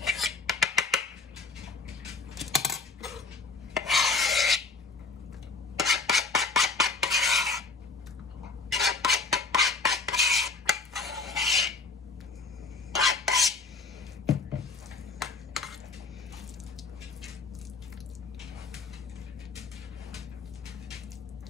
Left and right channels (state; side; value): quieter; right; 4.1 dB